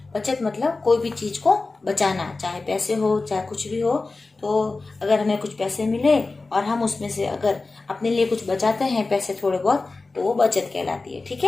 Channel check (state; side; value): quieter; right; 3.6 dB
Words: बचत मतलब कोई भी चीज को बचाना, चाहे पैसे हो चाहे कुछ भी हो। तो अगर हमें कुछ पैसे मिले और हम उसमें से अगर अपने लिए कुछ बचाते हैं पैसे थोड़े बहुत, तो वो बचत कहलाती है। ठीक